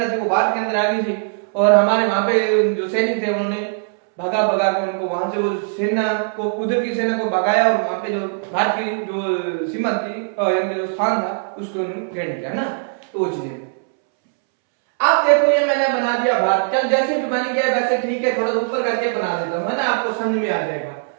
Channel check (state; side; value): silent; left; 66 dB below the other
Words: थी वो भारत के अंदर आ गई थी, और हमारे वहां पे जो सैनिक थे उन्होंने भगा भगा के उनको वहां से, वो सेना को, उधर की सेना को भगाया, और वहां पे जो भारत की जो सीमा थी, यानी जो स्थान था उसको घेर दिया, है ना। तो वो चीज, अब देखो ये मैंने बना दिया भारत, चल जैसे भी बन गया वैसे ठीक है, थोड़ा ऊपर करके बना देता हूं, है ना, आपको समझ में आ जाएगा।